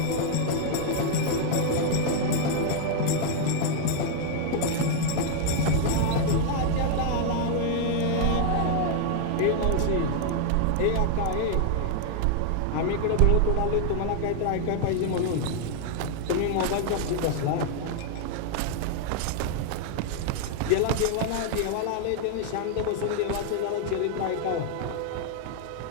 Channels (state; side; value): different; both; correlation 0.00